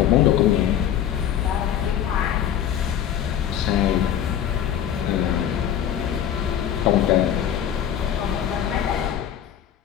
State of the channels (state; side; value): quieter; right; 10.1 dB